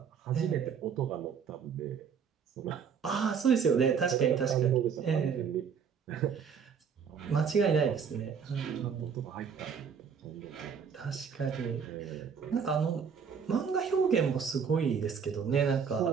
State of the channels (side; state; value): left; quieter; 6.7 dB